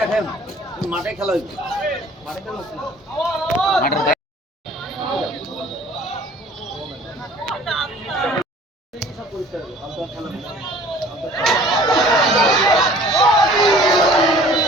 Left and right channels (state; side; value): normal; both; correlation 0.50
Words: দেখেন মাঠে খেলা হইছে মাঠে খেলা হচ্ছে